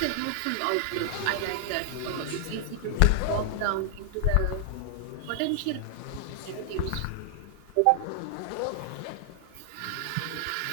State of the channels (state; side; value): different; both; correlation 0.00